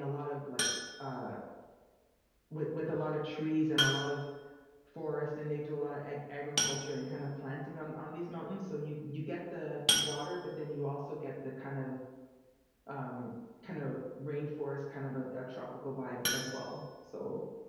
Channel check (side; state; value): both; identical; correlation 1.00